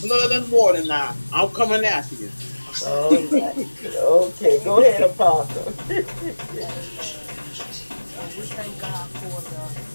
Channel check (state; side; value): inverted; both; correlation -1.00